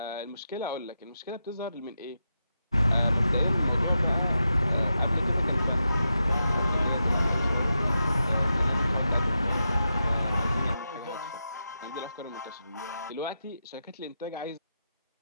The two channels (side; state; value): both; inverted; correlation -0.88